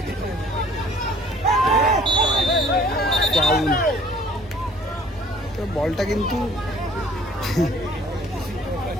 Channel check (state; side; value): normal; both; correlation 0.54